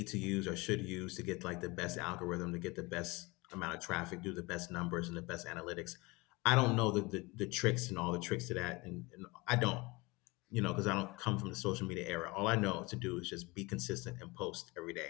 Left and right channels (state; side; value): quieter; right; 24.5 dB